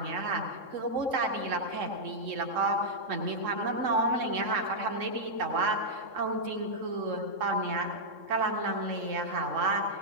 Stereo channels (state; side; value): late; left; 3.7 ms